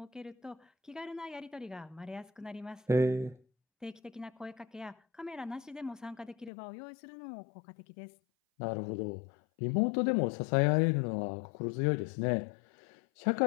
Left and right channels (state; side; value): drops out; right; at 6.5 s